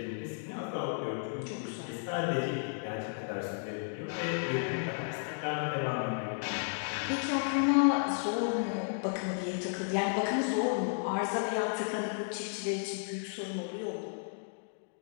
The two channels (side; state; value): right; silent; digital silence